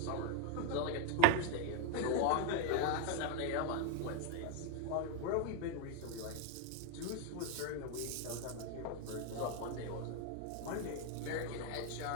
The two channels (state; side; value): different; both; correlation 0.01